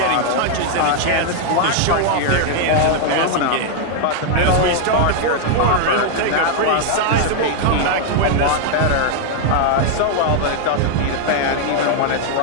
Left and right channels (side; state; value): both; different; correlation 0.00